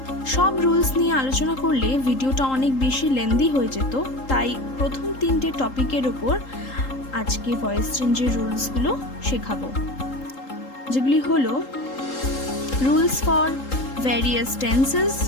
সব রুলস নিয়ে আলোচনা করলে ভিডিওটা অনেক বেশি লেন্দি হয়ে যেত, তাই প্রথম 3টে টপিকের ওপর আজকে ভয়েস চেঞ্জের রুলসগুলো শেখাবো, যেগুলি হলো rules for various tenses,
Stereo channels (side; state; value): right; late; 3.8 ms